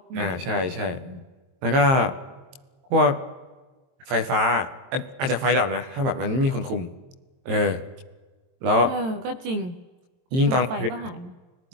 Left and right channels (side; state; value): left; late; 23 ms